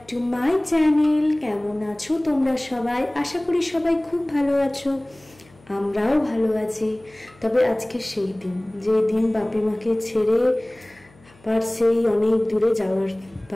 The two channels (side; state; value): left; noise; hum, 28 dB below the sound